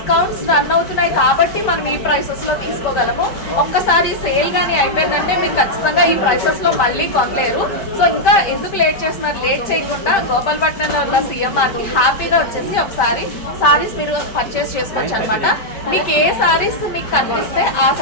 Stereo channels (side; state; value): right; late; 5.1 ms